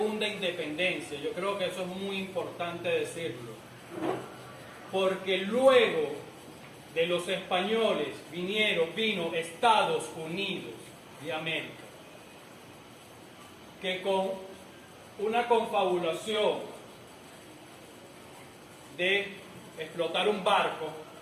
independencia? Yo creo que eso es muy importante decirlo. Porque luego de los españoles vino Estados Unidos de América, que con una confabulación de explotar un barco,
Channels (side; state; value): both; identical; correlation 1.00